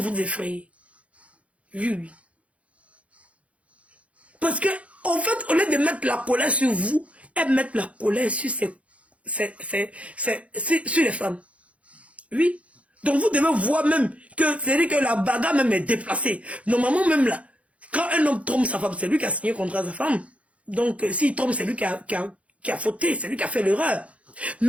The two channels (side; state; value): left; late; 0.064 ms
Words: effrayer. Oui, oui. Parce que En fait, au lieu de mettre la colère sur vous, elles mettent la colère sur, sur les femmes. Oui. Donc vous devez voir même que c'est-à-dire que la bagarre même est déplacée. Normalement même là, quand un homme trompe sa femme, c'est lui qui a signé contre sa femme. Donc s'il trompe, c'est lui qui a fauté, c'est lui qui a fait l'erreur.